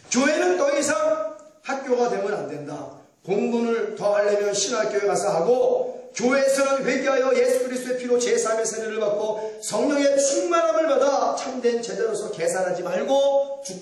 더 이상 학교가 되면 안 된다. 공부를 더 하려면 신학교에 가서 하고 교회에서는 회개하여 예수 그리스도의 피로 제3의 세례를 받고 성령의 충만함을 받아 참된 제자로서 계산하지 말고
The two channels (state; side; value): identical; both; correlation 1.00